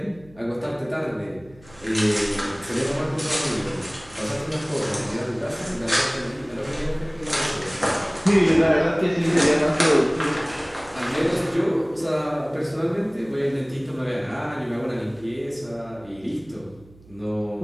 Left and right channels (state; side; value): noise; right; hum, 24 dB below the sound